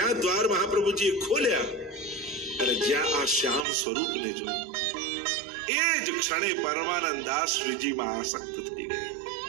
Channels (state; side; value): drops out; left; at 3.7 s